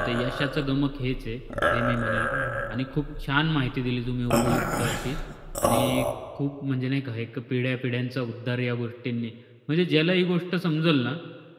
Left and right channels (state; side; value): identical; both; correlation 1.00